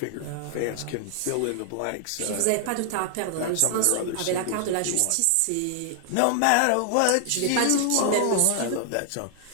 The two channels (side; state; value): both; different; correlation 0.00